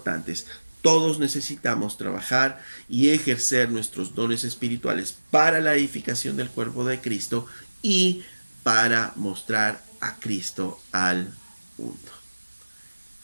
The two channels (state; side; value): inverted; both; correlation -1.00